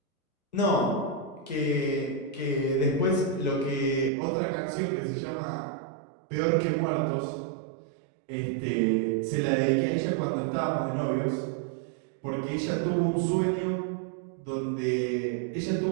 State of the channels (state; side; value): drops out; left; at 4.1 s